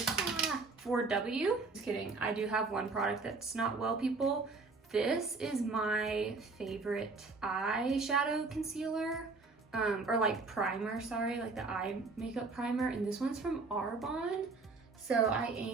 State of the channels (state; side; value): quieter; left; 3.9 dB